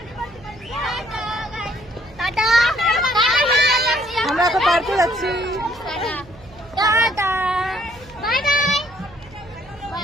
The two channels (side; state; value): right; noise; hum, 23 dB below the sound